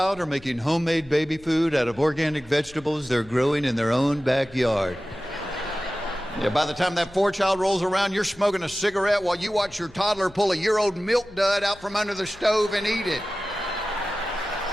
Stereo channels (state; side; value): noise; left; hum, 24 dB below the sound